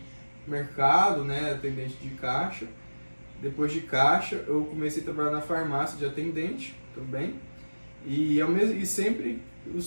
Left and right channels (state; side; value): inverted; both; correlation -1.00